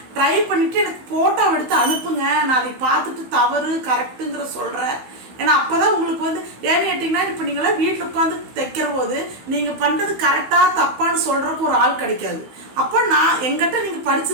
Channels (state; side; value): late; left; 16 ms